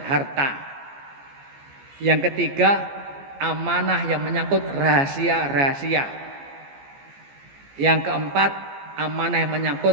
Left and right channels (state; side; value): late; left; 14 ms